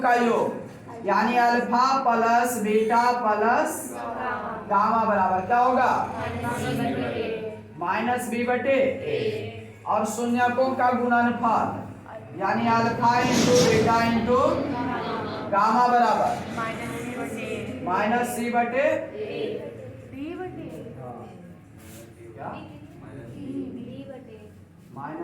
योग, यानी alpha plus beta plus gamma बराबर क्या होगा? -b/a। और शून्यकों का गुणनफल, यानी alpha into beta into gamma बराबर -c/a। क्या?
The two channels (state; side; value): identical; both; correlation 1.00